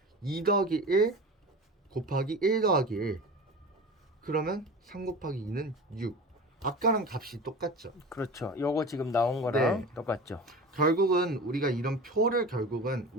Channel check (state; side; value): normal; both; correlation 0.33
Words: 2 더하기 1 곱하기 1 더하기 1 그러면 3 곱하기 2는 6 아까랑 값이 똑같죠. 그렇죠. 요거 지금 나온 거랑 네. 똑같죠. 결국은 우리가 이런 표를 결국은